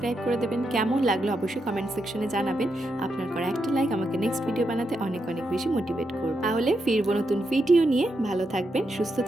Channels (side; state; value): both; normal; correlation 0.83